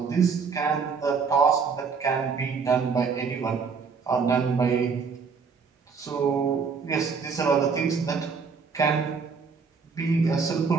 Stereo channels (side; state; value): left; quieter; 5.4 dB